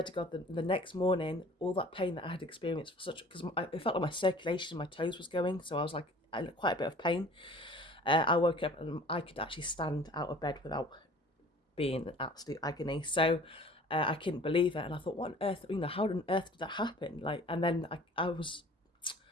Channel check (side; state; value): both; normal; correlation 0.48